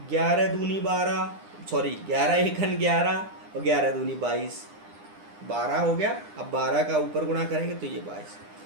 11 दूनी 12, सॉरी 11 एकन 11 और 11 दूनी 22, 12 हो गया। अब 12 का ऊपर गुणा करेंगे तो ये 22।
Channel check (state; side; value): late; left; 9.8 ms